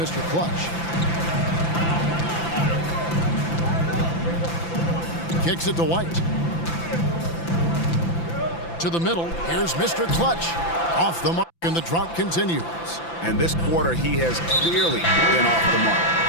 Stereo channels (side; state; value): right; late; 5.9 ms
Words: Clutch. Kicks it to White. To the middle. Here's Mr. Clutch. Off the mark, and the drought continues. And this quarter, he has clearly been off the mark.